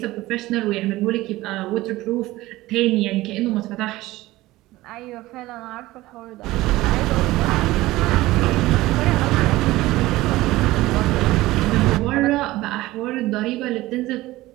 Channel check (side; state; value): left; quieter; 18.0 dB